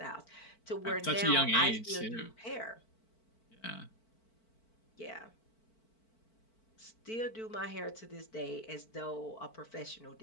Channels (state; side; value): late; right; 4.5 ms